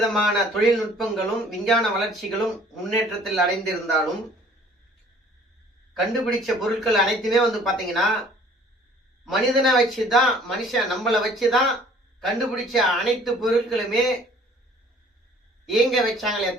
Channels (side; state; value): both; normal; correlation 0.54